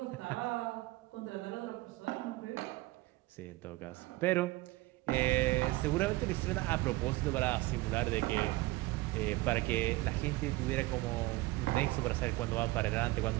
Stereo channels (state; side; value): quieter; left; 20.0 dB